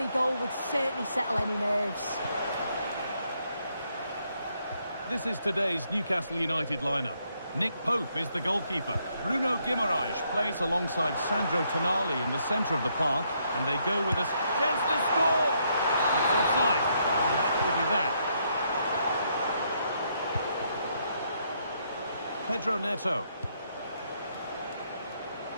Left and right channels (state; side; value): inverted; both; correlation -0.74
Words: goal would certainly settle any nerves. This is today's Newcastle United lineup. Nick Pope is the goalkeeper. Bruno Guimaraes plays alongside Sandro Tonali in the centre of the park, and they go with a chance to score! It's offside, and that will be that. Pedro Neto.